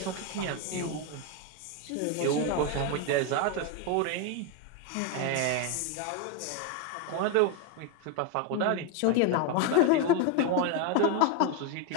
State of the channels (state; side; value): different; both; correlation 0.02